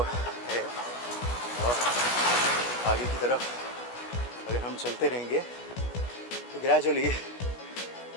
है, और आगे की तरफ अगर हम चलते रहेंगे तो ग्रेजुअली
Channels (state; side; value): late; right; 16 ms